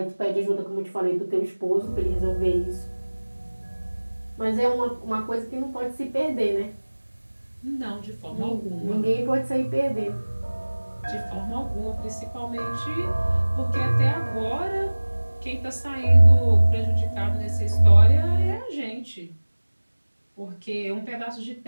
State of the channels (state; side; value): inverted; both; correlation -1.00